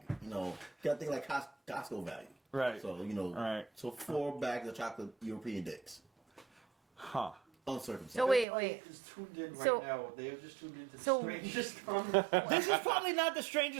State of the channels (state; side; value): drops out; left; at 8.5 s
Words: You know, you gotta think like Costco value. Right. So, you know, Right. so 4 bags of chocolate European dicks. Huh. Uncircumcised. So wait. is tuned in So- now. They have just tuned into so- strangest comment. This is probably not the